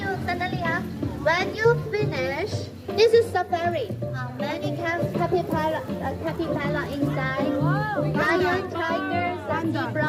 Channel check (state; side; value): identical; both; correlation 1.00